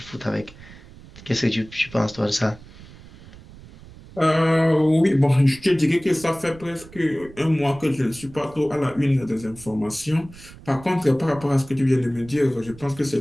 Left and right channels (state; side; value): noise; right; rumble, 20 dB below the sound